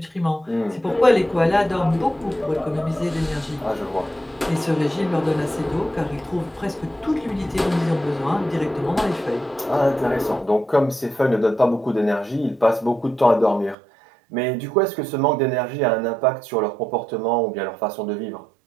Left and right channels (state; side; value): drops out; left; at 13.8 s